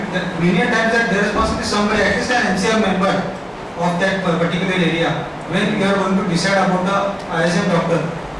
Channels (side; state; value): both; identical; correlation 1.00